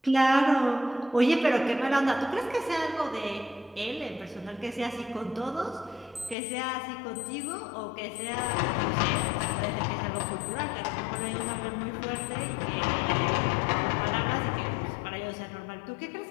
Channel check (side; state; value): right; drops out; at 6.4 s